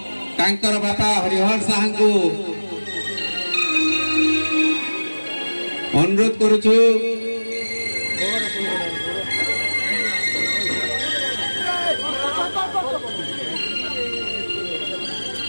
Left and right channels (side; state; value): both; inverted; correlation -1.00